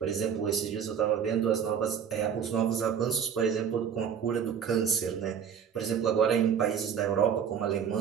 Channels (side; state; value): left; quieter; 7.8 dB